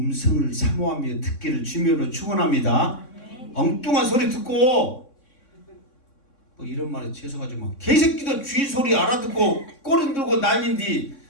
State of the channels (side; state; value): right; late; 3.6 ms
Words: 사모하며 듣기를 주님으로 축원합니다. 엉뚱한 소리 듣고 뭐 이런 말에 죄송하지만 개새끼도 주인 소리 알아듣고 꼬리 들고 난린디